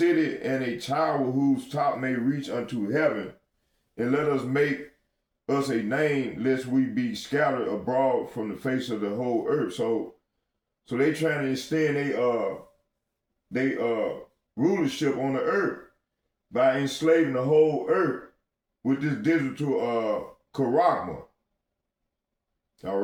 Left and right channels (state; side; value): identical; both; correlation 1.00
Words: and a tower whose top may reach unto heaven, and let us make us a name, lest we be scattered abroad from the face of the whole earth. So they trying to extend they rulership on the earth by enslaving the whole earth with this digital charagma. All